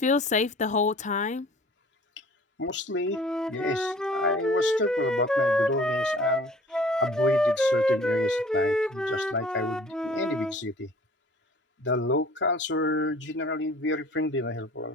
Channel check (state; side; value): normal; both; correlation 0.49